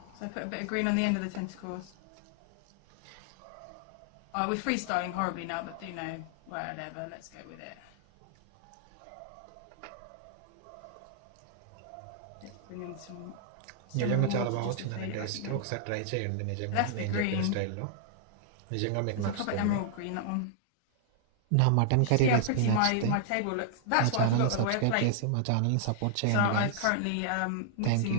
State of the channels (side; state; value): both; different; correlation -0.01